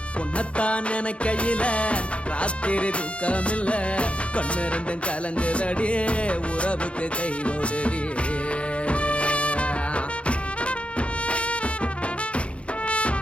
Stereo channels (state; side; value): late; right; 0.061 ms